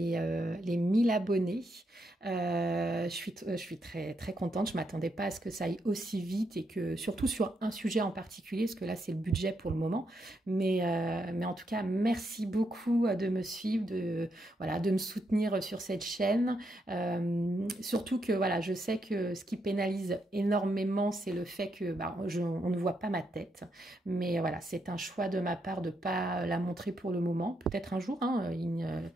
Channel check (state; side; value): normal; both; correlation 0.79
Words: 1000 abonnés. Je suis très, très contente. Je ne m'attendais pas à ce que ça aille aussi vite et que surtout sur un sujet en particulier, parce que là c'est le budget pour le moment. Mais en tout cas, merci beaucoup de me suivre, voilà, de me soutenir sur cette chaîne. Surtout que voilà, je sais que ce qui pénalise énormément, c'est le fait que on ne voit pas ma tête. Mais voilà, c'est un choix de ma part de ne pas la montrer pour le moment. Peut-être un jour, hein,